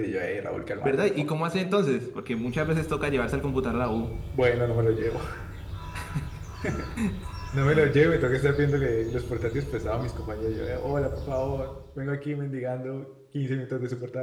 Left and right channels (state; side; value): identical; both; correlation 1.00